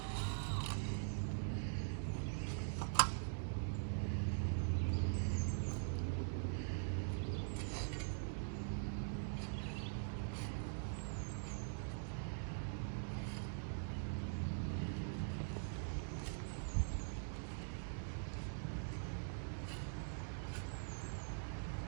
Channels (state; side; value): silent; left; digital silence